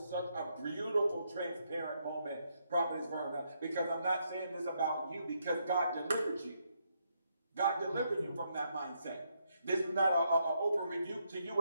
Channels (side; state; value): both; inverted; correlation -0.77